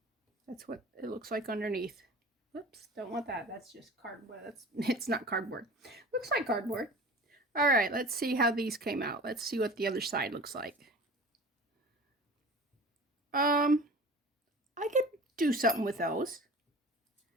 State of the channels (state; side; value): normal; both; correlation 0.39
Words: that's what it looks like underneath. Oops, don't want that. That's just cardboard. It's not cardboard. Looks like cardboard. All right, let's see how these came out. Let's see what the other side looks like. I could do something with those.